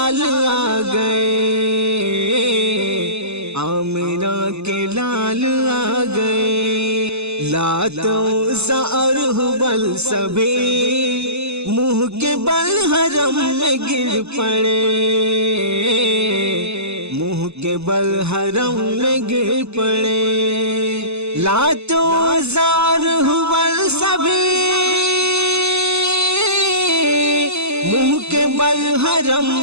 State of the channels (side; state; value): left; late; 0.80 ms